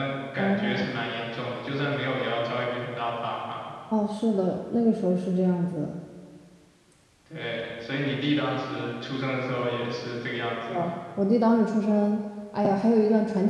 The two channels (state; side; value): identical; both; correlation 1.00